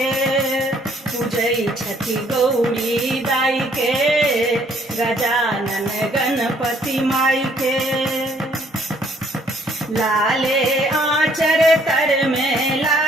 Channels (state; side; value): normal; both; correlation 0.63